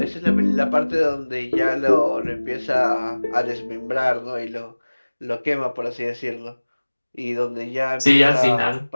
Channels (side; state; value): both; inverted; correlation -1.00